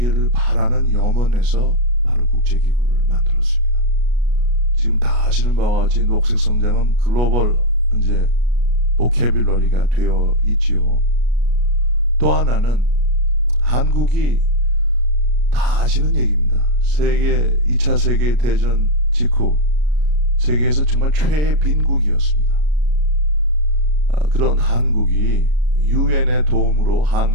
바라는 염원에서 바로 국제기구를 만들었습니다. 지금 다 아시는 바와 같이 녹색 성장은 글로벌 이제 보캐뷸러리가 되어 있지요. 또 하나는 한국이 다 아시는 얘기입니다. 2차 세계 대전 직후 세계에서 정말 최애 빈국이었습니다. 그런 한국이 유엔의 도움으로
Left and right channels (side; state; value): left; late; 33 ms